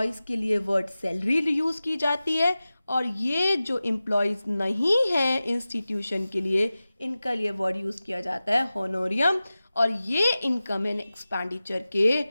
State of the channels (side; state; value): both; inverted; correlation -0.96